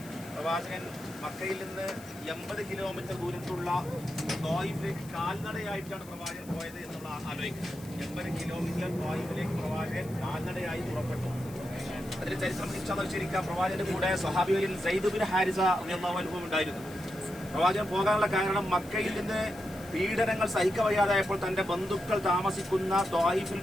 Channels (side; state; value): left; noise; hiss, 20 dB below the sound